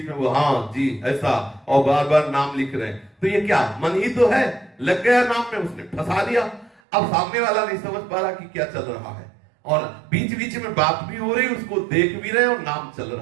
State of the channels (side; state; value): left; drops out; at 6.8 s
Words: में वो हाँ जी ऐसा और बार बार नाम लिख रहे हैं। तो ये क्या मन ही तो है, लग गया नाम में, उसने फंसा दिया। अब सामने वाला नहीं समझ पा रहा कि क्या चल रहा है और बीच बीच में बात भी हो रही, उसको देख भी रहे और नाम चल